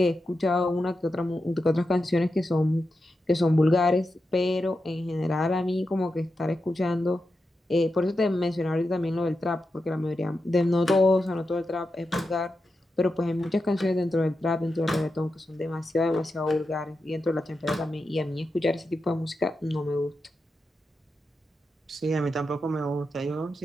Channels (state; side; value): normal; both; correlation 0.89